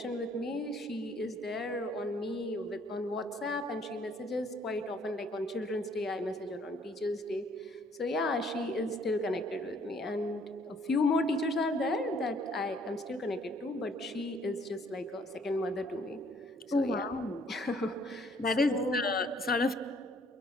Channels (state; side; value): normal; both; correlation 0.62